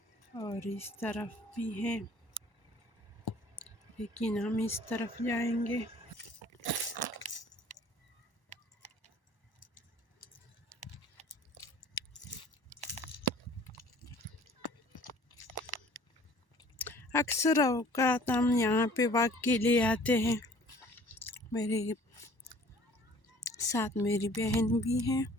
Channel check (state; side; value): late; right; 1.1 ms